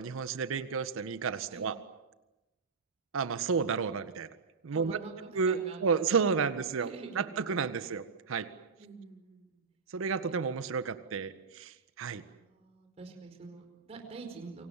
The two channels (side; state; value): left; quieter; 5.2 dB